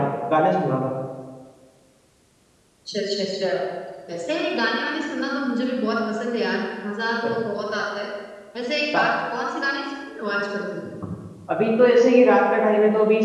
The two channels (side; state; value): both; identical; correlation 1.00